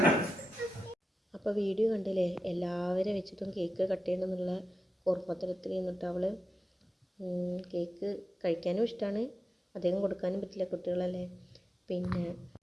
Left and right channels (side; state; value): both; normal; correlation 0.91